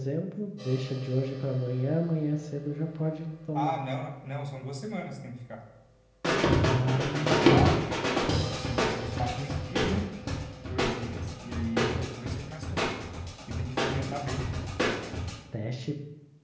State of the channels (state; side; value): identical; both; correlation 1.00